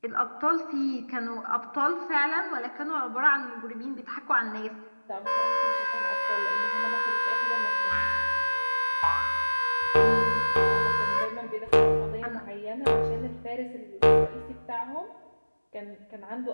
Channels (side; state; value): both; inverted; correlation -1.00